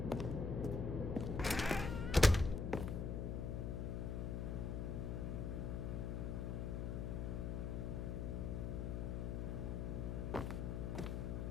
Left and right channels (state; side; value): noise; left; hum, 1 dB below the sound